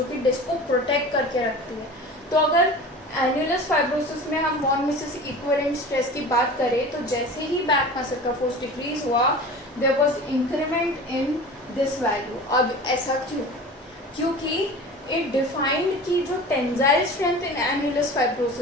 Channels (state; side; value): normal; both; correlation 0.36